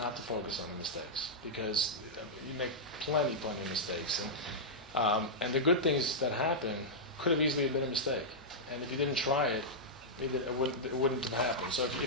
to focus on the mistakes because you make plenty of mistakes, and the good things that happen could have easily been a mistake. And if you didn't try it, it wouldn't have happened. So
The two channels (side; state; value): both; normal; correlation -0.09